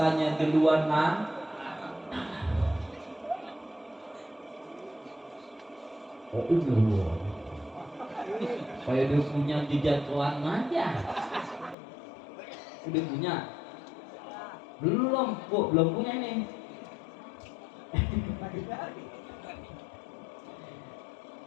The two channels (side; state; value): right; drops out; at 11.8 s